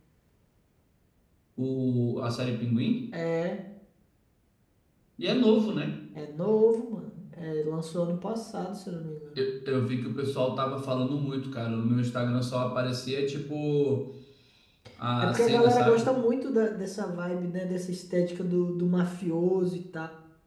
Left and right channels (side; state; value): both; identical; correlation 1.00